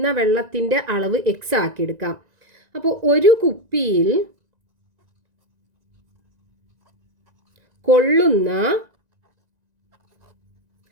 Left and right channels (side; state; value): left; late; 1.9 ms